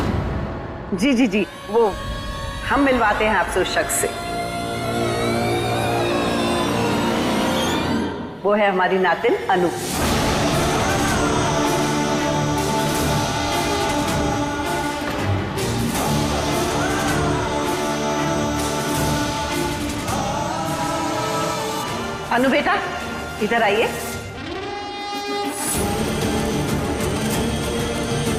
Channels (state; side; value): identical; both; correlation 1.00